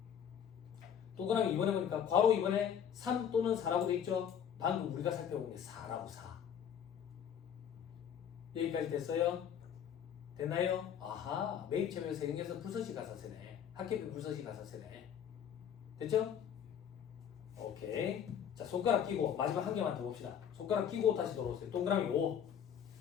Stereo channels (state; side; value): quieter; right; 8.6 dB